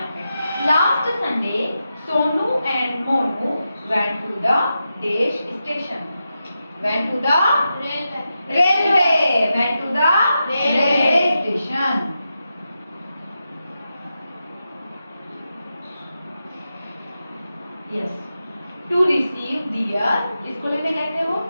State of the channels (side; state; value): both; inverted; correlation -0.88